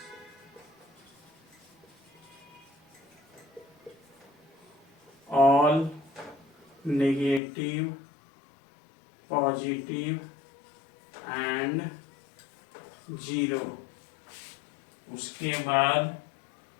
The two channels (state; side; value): drops out; right; at 7.4 s